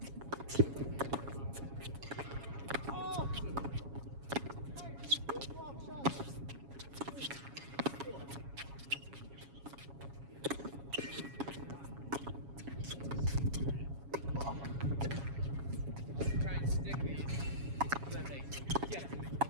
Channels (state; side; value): late; left; 7.2 ms